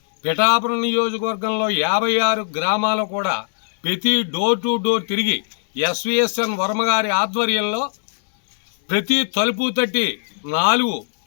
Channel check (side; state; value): right; silent; digital silence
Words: పిఠాపురం నియోజకవర్గంలో 56 గ్రామాలు కూడా ప్రతి డోర్ టు డోర్ తిరిగి ఎస్వీఎస్ఎన్ వర్మ గారి ఆధ్వర్యంలో ప్రతి తలుపు తట్టి